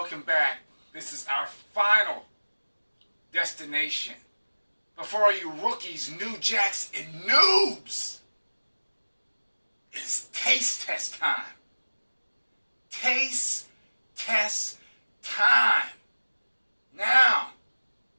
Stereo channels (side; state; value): both; inverted; correlation -1.00